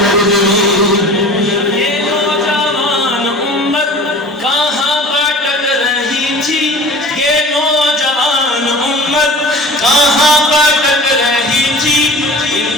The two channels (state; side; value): normal; both; correlation 0.41